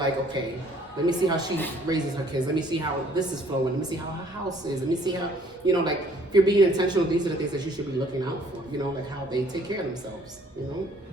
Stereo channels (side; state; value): both; normal; correlation 0.59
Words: okay, let me see how she raises her kids. Let me see how this is flowing. Let me see how her house is. Let me see how, you know, like if you're being intentional, these are the things that you should be looking out for. You know, like how they take care of themselves. You know.